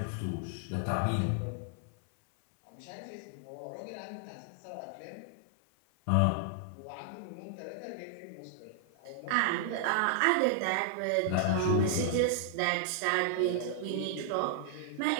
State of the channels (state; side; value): different; both; correlation 0.00